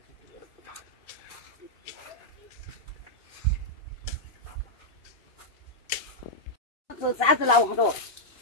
चार्ज लाऊ हटो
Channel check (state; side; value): late; right; 2.8 ms